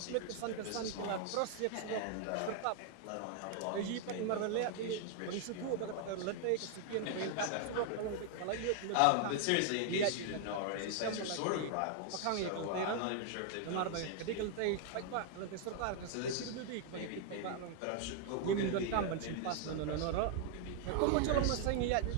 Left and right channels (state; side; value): different; both; correlation 0.00